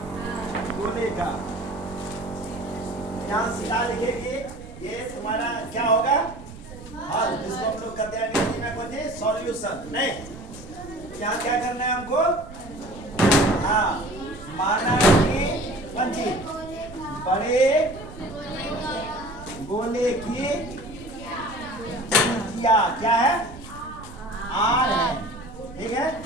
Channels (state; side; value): noise; right; rumble, 16 dB below the sound